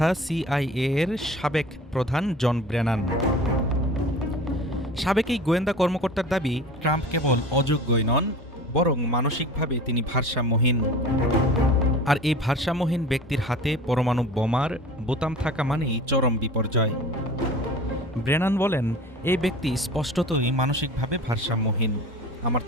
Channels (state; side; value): normal; both; correlation 0.39